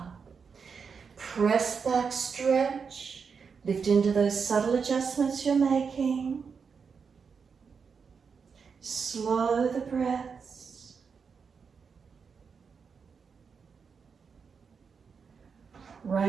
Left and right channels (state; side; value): quieter; left; 5.8 dB